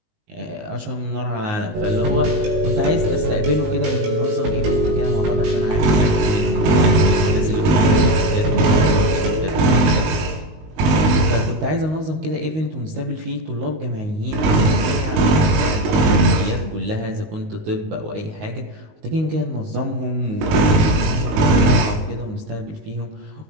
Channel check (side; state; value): left; late; 19 ms